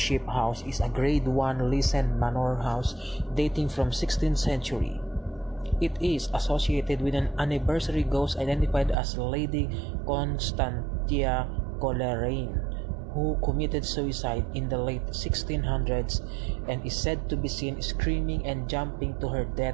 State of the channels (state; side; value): drops out; left; at 9.0 s